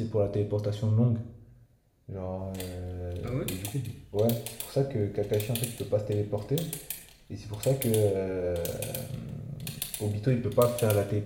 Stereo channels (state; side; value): identical; both; correlation 1.00